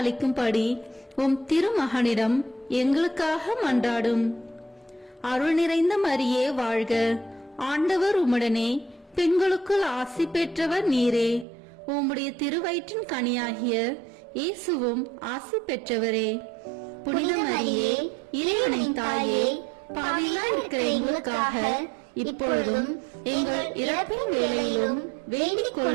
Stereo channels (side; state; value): left; drops out; at 11.5 s